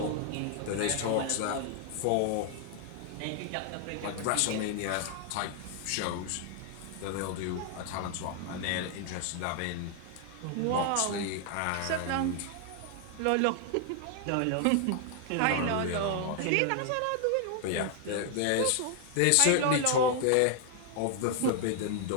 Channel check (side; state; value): both; different; correlation 0.00